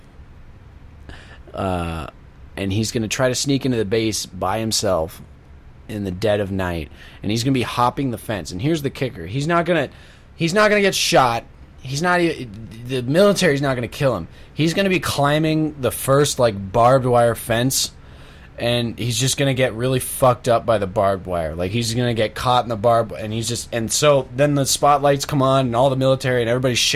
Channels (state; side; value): identical; both; correlation 1.00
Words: and he's gonna try to sneak into the base by himself in the dead of night, and he's gonna be hopping the fence. And here's the kicker: he's not gonna get shot. The military's not gonna kill him. He's gonna be climbing the first like barbed wire fence. And he's just going to get really fucked up by the barbed wire. Like, he's going to get caught in the barbed wire. And so then the spotlights come on and all the military and everybody's